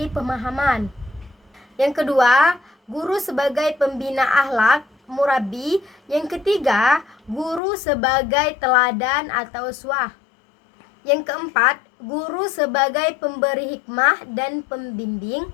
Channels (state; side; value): drops out; right; at 7.6 s